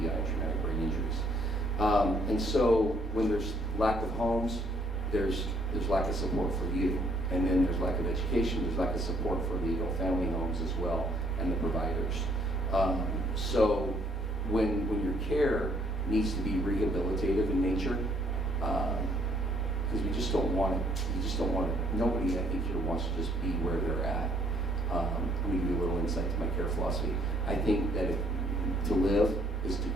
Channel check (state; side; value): normal; both; correlation 0.65